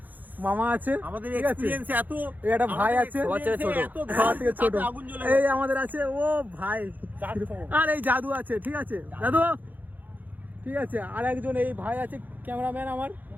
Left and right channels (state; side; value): late; left; 0.084 ms